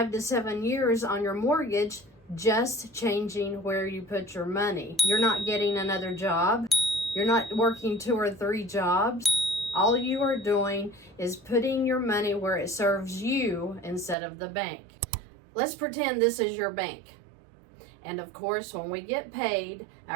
to 7 years on your mortgage, just changing where you put your money. You're not getting another job. You're not working 2 or 3 jobs. All you are doing is putting your money where it serves you instead of the bank. Let's pretend this is your bank. And of course, when we get paid,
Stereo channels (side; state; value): left; drops out; at 14.2 s